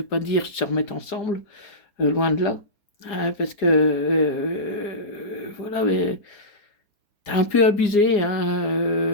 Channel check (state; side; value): late; right; 4.9 ms